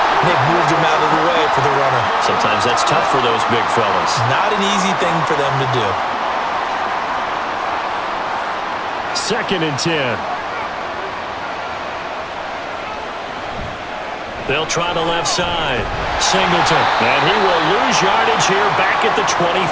And they've moved them out of the way for the runner. Sometimes that's tough for those big fellas. Not an easy thing for them to do. 2nd and 10. They'll try the left side. Singleton. And he will lose yardage here back at the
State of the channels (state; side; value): identical; both; correlation 1.00